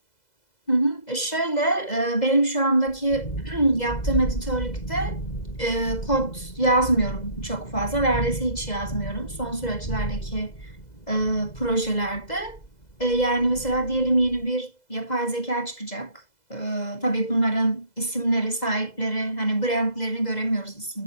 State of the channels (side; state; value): right; late; 2.0 ms